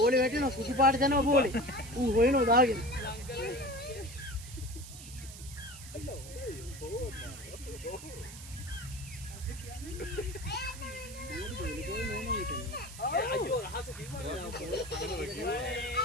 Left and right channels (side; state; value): right; noise; hiss, 14 dB below the sound